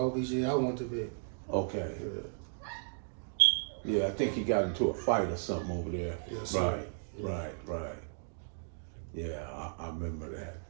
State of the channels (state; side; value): silent; left; digital silence